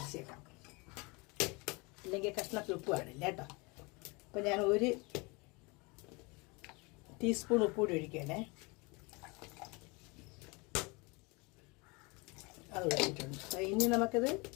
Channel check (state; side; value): quieter; right; 27.6 dB